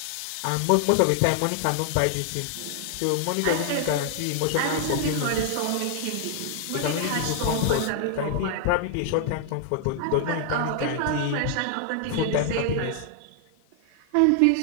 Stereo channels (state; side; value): different; both; correlation 0.00